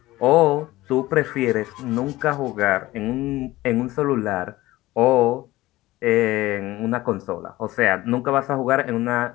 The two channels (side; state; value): right; quieter; 17.6 dB